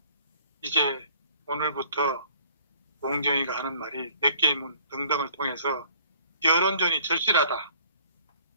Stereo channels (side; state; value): both; inverted; correlation -0.56